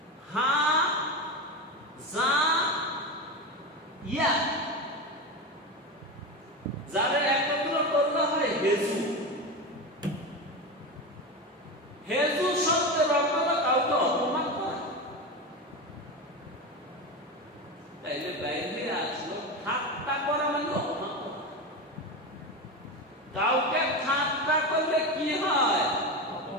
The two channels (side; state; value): both; normal; correlation 0.20